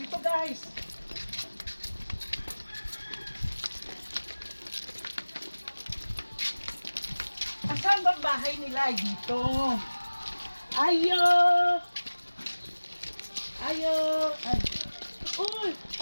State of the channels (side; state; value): both; inverted; correlation -1.00